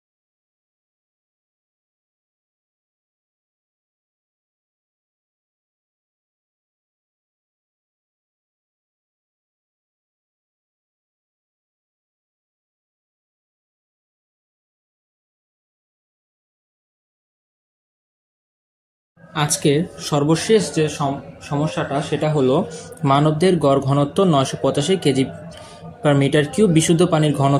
আজকের সর্বশেষ যে সমস্যাটা সেটা হলো, মানবদের গড় ঘনত্ব 985 কেজি পার মিটার কিউব, বিশুদ্ধ পানির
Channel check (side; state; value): both; identical; correlation 1.00